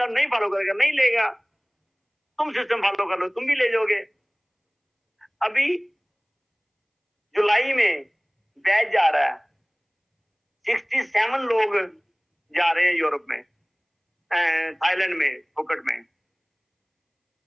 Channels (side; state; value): both; identical; correlation 1.00